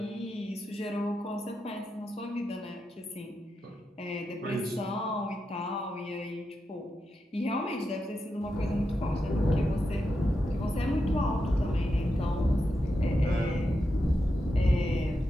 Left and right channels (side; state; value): both; normal; correlation 0.87